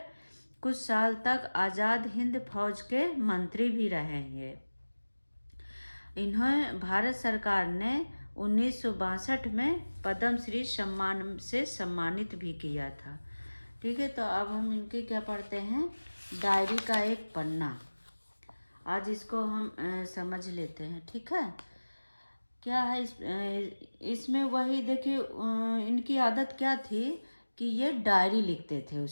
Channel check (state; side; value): inverted; both; correlation -1.00